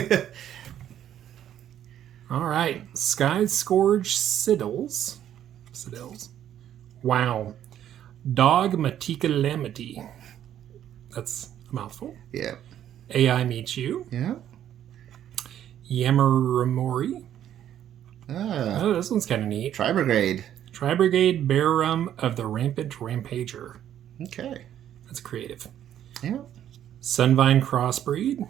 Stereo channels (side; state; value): left; quieter; 10.8 dB